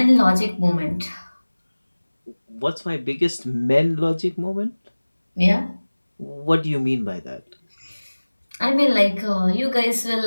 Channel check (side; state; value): both; inverted; correlation -1.00